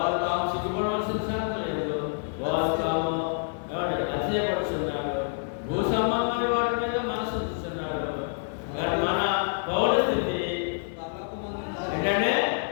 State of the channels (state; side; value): silent; right; 57 dB below the other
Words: తాము సిగ్గుపడవలసిన సంగతి లేదు. వారు తాము అతిశయపడుతున్నారు. భూ సంబంధమైన వాటి మీద మనసు ఉంచుతున్నారు. కానీ మన పౌర స్థితి ఏంటంటే